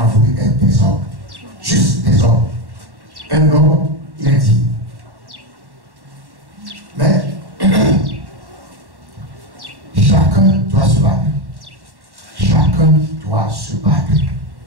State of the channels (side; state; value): left; late; 1.1 ms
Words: voulu être des hommes. Juste des hommes. Un homme, il est digne. Mais chacun doit se battre. Chacun doit se battre